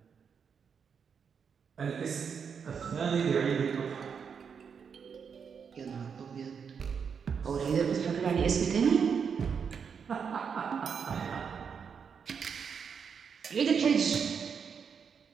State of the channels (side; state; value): left; quieter; 6.6 dB